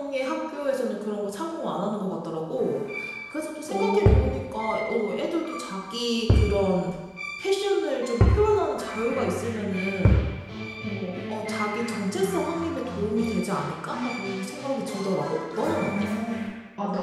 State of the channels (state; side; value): identical; both; correlation 1.00